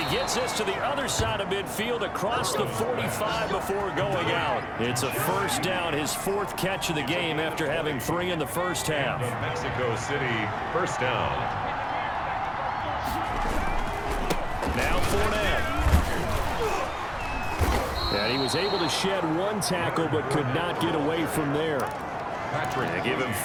he gets this to the other side of midfield across the 45 before going out. It's a first down, his 4th catch of the game after having 3 in the first half. Mexico City, first down. Now Fournette. And he was able to shed 1 tackle but could not get away from there. They give him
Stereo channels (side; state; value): both; identical; correlation 1.00